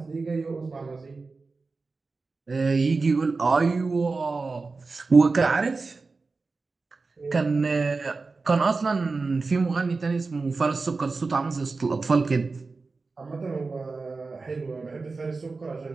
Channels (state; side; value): quieter; left; 4.0 dB